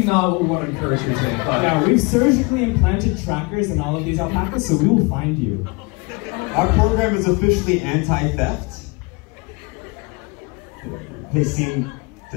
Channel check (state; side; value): quieter; right; 28.4 dB